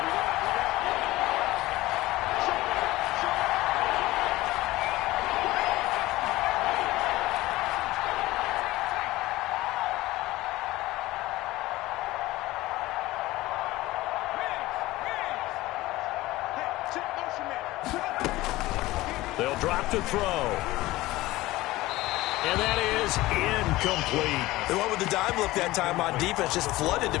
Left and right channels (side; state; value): right; quieter; 18.2 dB